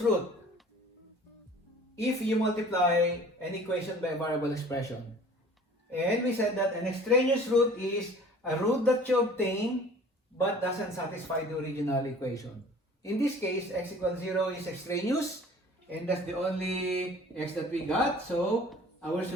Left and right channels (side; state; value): both; normal; correlation 0.48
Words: root if you multiply an equation by a variable expression. And we said that an extraneous root is a root that you obtain but doesn't satisfy the original equation. In this case, x equals 0 is extraneous, and that's the only x that we got, so our